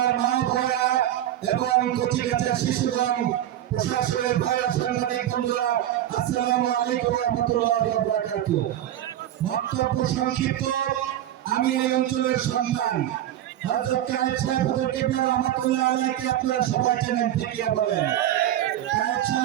মা বোনেরা এবং কচিকাঁচা শিশুগণ, প্রশাসনের ভাইরা, সাংবাদিক বন্ধুরা, আসসালামু আলাইকুম ওয়া রাহমাতুল্লাহি ওয়া বারাকাতুহু। বক্তব্য সংক্ষিপ্ত। আমি এই অঞ্চলের সন্তান হযরত কায়েদ সাহেব হুজুর কিবলা রাহমাতুল্লাহ আলাইহিকে আপনারা সবাই জানেন, ঠিক কি বলেন? কায়েদ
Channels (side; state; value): left; quieter; 12.3 dB